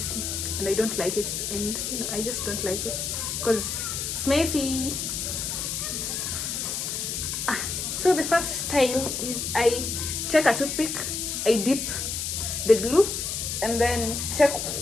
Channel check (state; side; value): noise; left; hiss, 3 dB below the sound